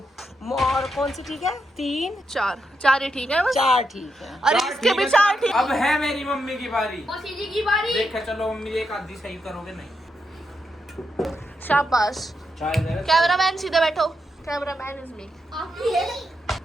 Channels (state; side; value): normal; both; correlation 0.83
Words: और कौन सी ठीक है? 3 4 ही ठीक है बस। 4 ठीक है। अरे चार इसके ठीक भी है, 4 ठीक। अब है मेरी मम्मी की बारी। मौसी जी की बारी। देखा चलो मम्मी एक आधी सही करोगे नहीं। शाबाश। चाय दे। कैमरामैन सीधे बैठो। Cameraman is me. आपकी है।